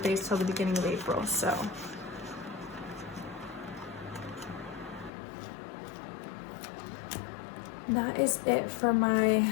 till the beginning of April, so. That is it for my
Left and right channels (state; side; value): drops out; right; at 5.1 s